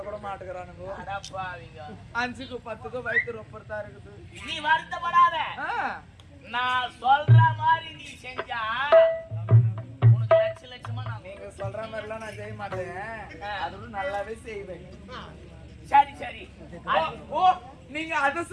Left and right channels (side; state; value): both; identical; correlation 1.00